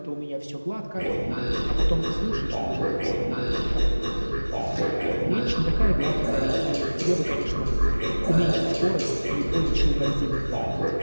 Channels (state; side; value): inverted; both; correlation -1.00